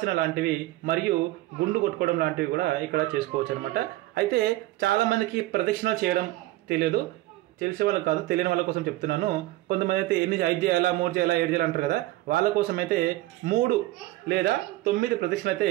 లాంటివి మరియు గుండు కొట్టుకోవడం లాంటివి కూడా ఇక్కడ చేసుకోవచ్చు అనమాట. అయితే చాలామందికి ప్రదక్షిణలు చేయడం తెలియదు. తెలిసే వాళ్ళకి కాదు, తెలియని వాళ్ళ కోసం చెప్తున్నాను. కొంతమంది అయితే 5 చేయాలా, 3 చేయాలా, 7 చేయాలి అంటారు కదా. వాళ్ళ కోసం అయితే 3 లేదా 9 ప్రదక్షిణలు అయితే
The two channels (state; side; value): quieter; left; 17.4 dB